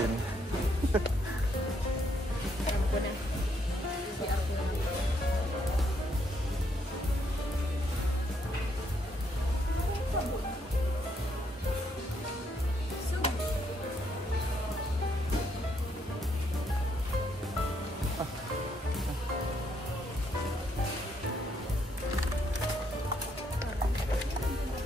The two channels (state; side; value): normal; both; correlation 0.73